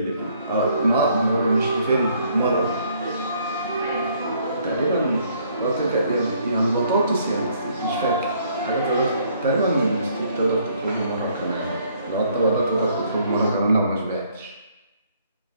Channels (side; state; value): both; inverted; correlation -0.65